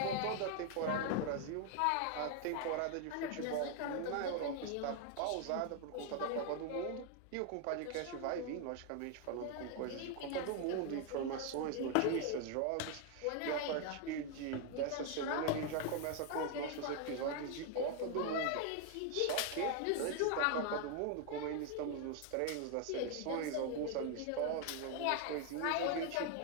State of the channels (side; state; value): both; different; correlation 0.00